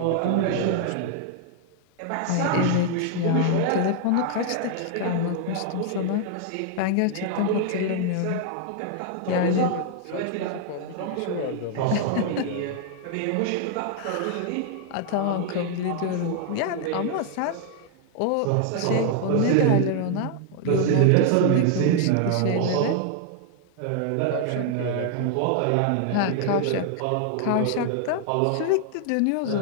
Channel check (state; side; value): different; both; correlation 0.00